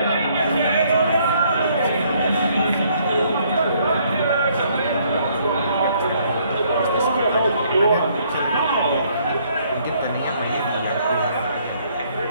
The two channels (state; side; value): inverted; both; correlation -0.66